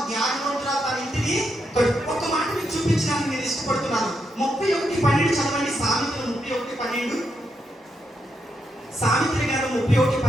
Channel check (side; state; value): both; normal; correlation 0.82